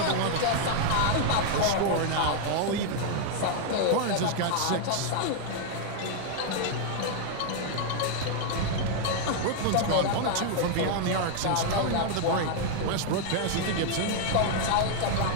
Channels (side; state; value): both; different; correlation 0.00